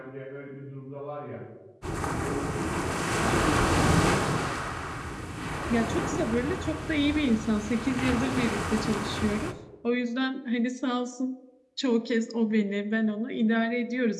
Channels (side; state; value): both; identical; correlation 1.00